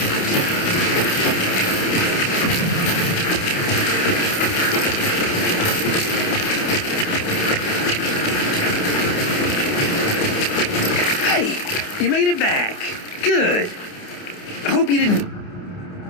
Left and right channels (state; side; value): late; right; 29 ms